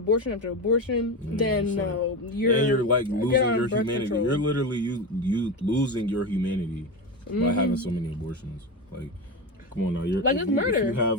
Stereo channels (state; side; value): normal; both; correlation 0.19